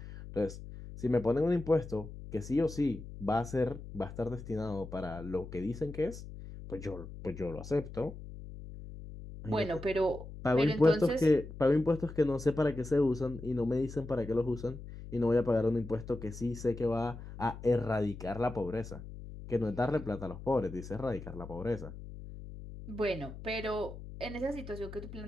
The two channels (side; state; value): left; noise; hum, 12 dB below the sound